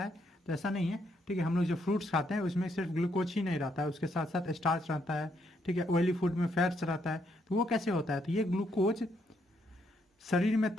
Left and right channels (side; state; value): both; normal; correlation 0.75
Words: है, तो ऐसा नहीं है, ठीक है। हम लोग जो फ्रूट्स खाते हैं उसमें सिर्फ ग्लूकोज ही नहीं रहता है, उसके साथ साथ स्टार्च रहता है, ठीक है, ऑयली फूड में फैट्स रहता है। तो वो कैसे होता है, तो ये ग्लूकोज शरीर में